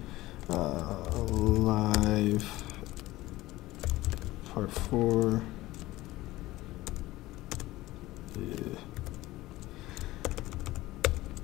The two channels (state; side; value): quieter; right; 17.7 dB